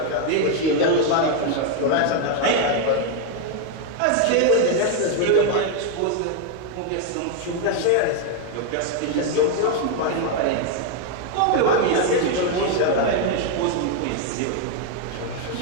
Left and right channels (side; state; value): both; different; correlation 0.01